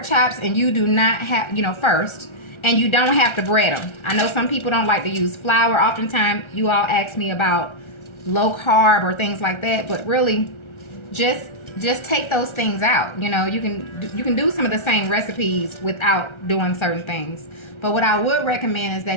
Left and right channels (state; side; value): late; right; 1.3 ms